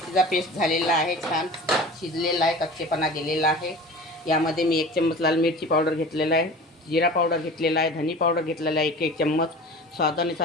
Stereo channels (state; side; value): normal; both; correlation 0.38